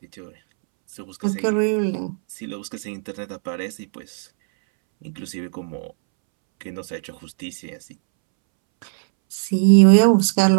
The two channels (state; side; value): silent; left; 65 dB below the other